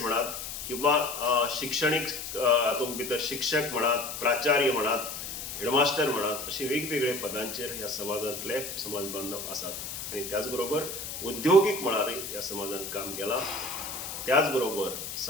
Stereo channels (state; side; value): noise; left; hiss, 7 dB below the sound